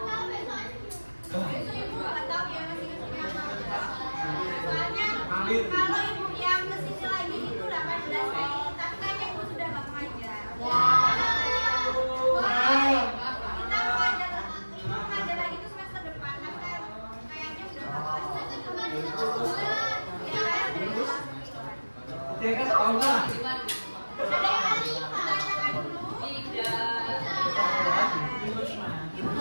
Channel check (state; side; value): inverted; both; correlation -1.00